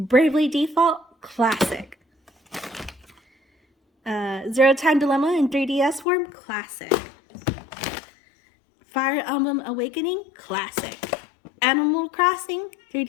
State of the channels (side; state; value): right; drops out; at 6.1 s